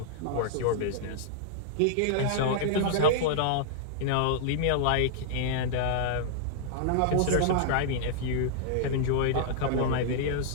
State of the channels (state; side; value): different; both; correlation -0.01